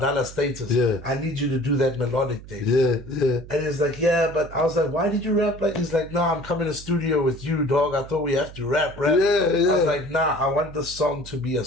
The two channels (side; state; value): right; noise; hum, 16 dB below the sound